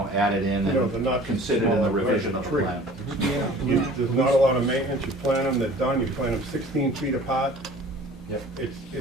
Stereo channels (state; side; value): normal; both; correlation 0.47